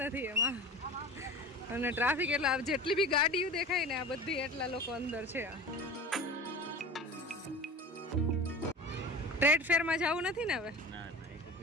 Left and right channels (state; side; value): normal; both; correlation 0.35